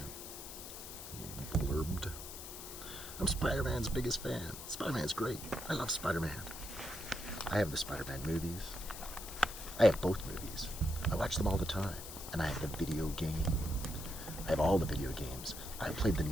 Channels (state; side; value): noise; left; hiss, 10 dB below the sound